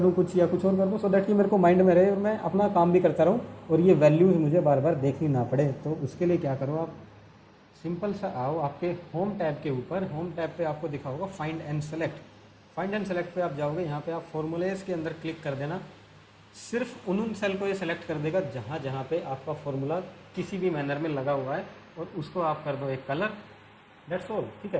कुछ या कुछ और कर दूं, सो दैट कि मेरे को माइंड में रहे और मैं अपना काम भी करता रहूं और ये वैल्यूज़ मुझे बार बार देखनी ना पड़े। तो उसके लिए क्या करो, आप सिंपल सा आओ आपके होम टैब के ऊपर, होम टैब पे आपको दिखा होगा find and select, find and select पे आप जाओगे, यहाँ पे आप फॉर्मूलेस के अंदर क्लिक कर देना, सिर्फ उन सेल को ये सेलेक्ट कर देगा जहाँ जहाँ पे आपका फॉर्मूला किसी भी मैनर में लगा हुआ है, और उसको आप कर दो एक कलर, दैट्स ऑल, ठीक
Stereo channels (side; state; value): both; identical; correlation 1.00